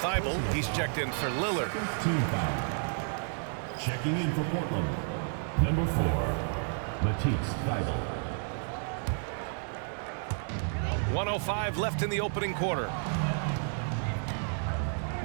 he's checked in for Lillard. Team foul. Checking in for Portland. Number 4, Matisse Thibault. 1:05 left in the opening quarter.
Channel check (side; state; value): left; silent; 56 dB below the other